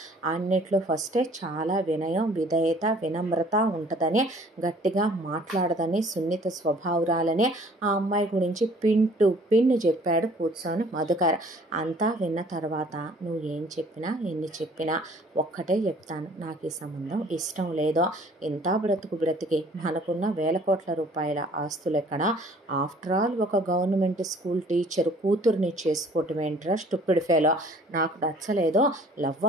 అన్నిట్లో ఫస్టే, చాలా వినయం, విధేయత, వినమ్రత ఉంటుందని, గట్టిగా మాట్లాడదని, సున్నిత స్వభావురాలని ఆ అమ్మాయి గురించి పిన్ టు పిన్ చెప్పాడు కూర్చొని మధుకర్. అంతా విన్న తర్వాత నువ్వు ఏం చెప్పినా ఎన్ని చెప్పినా ఒక్కటే చెప్తాను, నాకు ఈ సంబంధం ఇష్టం లేదో. ఇంత బ్రతికి మనకున్న వేల కోట్ల రూపాయల ఆస్తులు ఎక్కడ, ఆఫ్టర్ ఆల్ ఒక గవర్నమెంట్ స్కూల్ టీచర్ కూతుర్ని చేసుకోవటం ఏంట్రా స్టూపిడ్ ఫెలో, నాకు నచ్చలేదో. లవ్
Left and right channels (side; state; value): both; normal; correlation 0.54